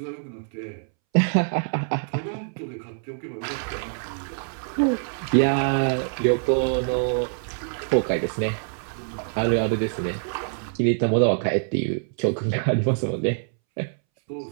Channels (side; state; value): left; silent; 62 dB below the other